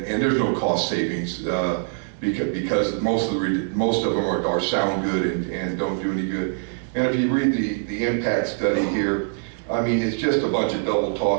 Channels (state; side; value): silent; left; digital silence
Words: there's no cost savings because most of them are sound good and don't do any good. And if you read the impact study here, I mean, it's just a bunch of double